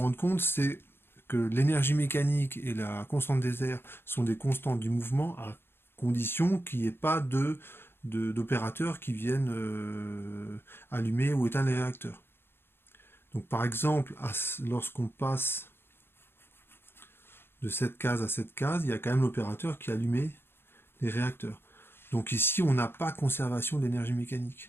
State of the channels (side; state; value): right; late; 0.11 ms